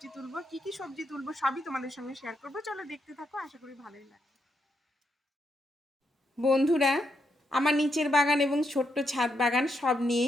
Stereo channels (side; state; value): both; normal; correlation 0.80